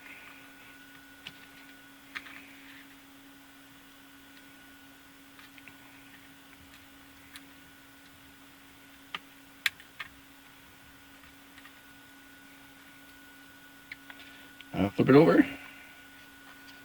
Flip it over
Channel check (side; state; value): both; identical; correlation 1.00